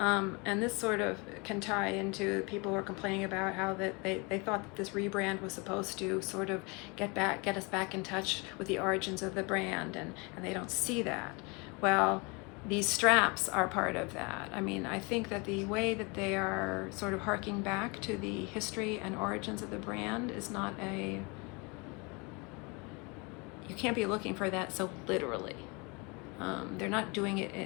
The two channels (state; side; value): quieter; right; 29.2 dB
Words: this sort of can tie into people who are complaining about how that they thought that this rebrand was supposed to sort of get us back in touch with the origins of the brand, and they don't see that. Well, these straps are part of that. I mean, I think that the way that they are sort of harking back to the history and origins of the brand is not you can't be looking for that so literally. They're not doing